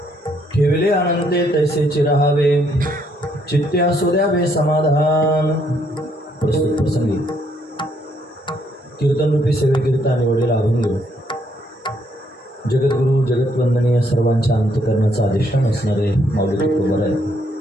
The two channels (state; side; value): normal; both; correlation 0.71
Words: ठेवले आनंदे तैसेचे राहावे चित्ते असू द्यावे समाधान. प्रस्तुत प्रसंगी कीर्तनरूपी सेवेकरिता निवडलेला अभंग जगद्गुरु जगतवंदनीय सर्वांच्या अंतकरणाचा अधिष्ठान असणारे माऊली तुकोबाराय